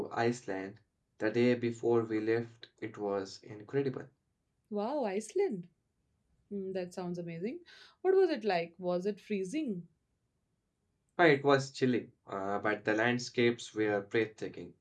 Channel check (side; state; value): both; identical; correlation 1.00